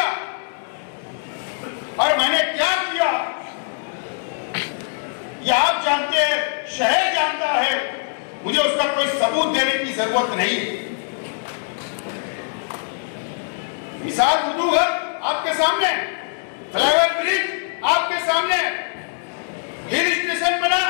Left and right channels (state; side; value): silent; right; digital silence